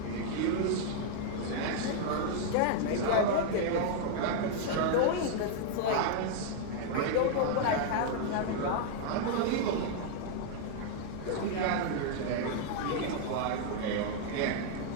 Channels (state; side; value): different; both; correlation -0.01